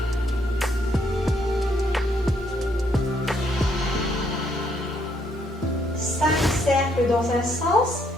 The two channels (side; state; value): both; normal; correlation 0.71